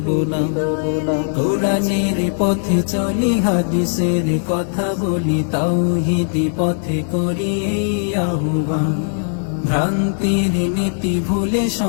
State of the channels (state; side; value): silent; right; digital silence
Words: নাম। কোরআনের পথে চলি, হাদিসের কথা বলি, তাওহীদ পথে করি এই আহ্বান। ভ্রান্তির নীতি ভুলে